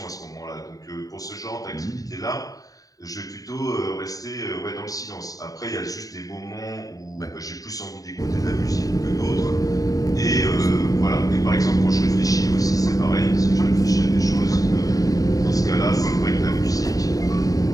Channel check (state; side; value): late; right; 0.17 ms